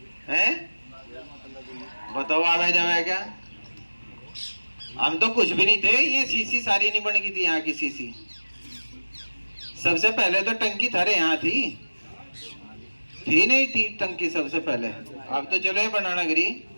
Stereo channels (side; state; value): both; inverted; correlation -1.00